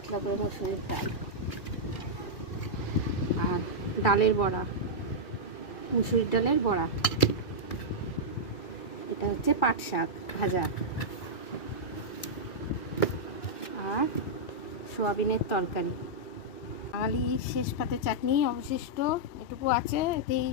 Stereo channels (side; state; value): right; late; 2.4 ms